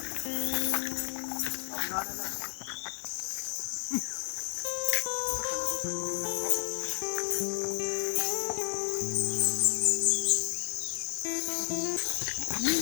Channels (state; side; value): silent; right; 57 dB below the other